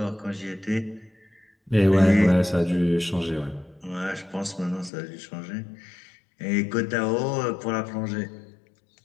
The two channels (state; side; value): drops out; right; at 4.9 s